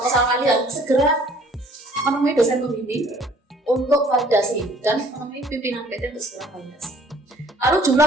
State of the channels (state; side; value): normal; both; correlation 0.55